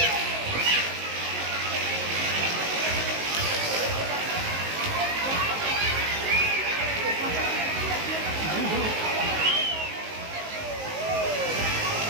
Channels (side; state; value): left; late; 19 ms